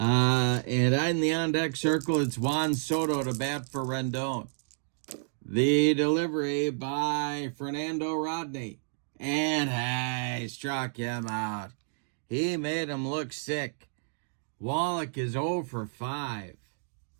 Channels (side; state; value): left; silent; digital silence